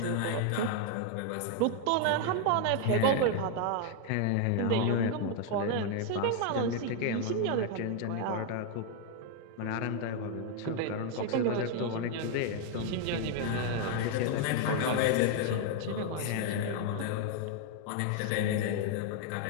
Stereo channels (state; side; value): different; both; correlation 0.00